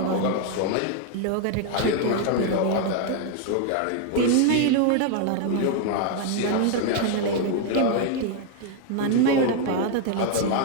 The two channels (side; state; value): both; different; correlation 0.00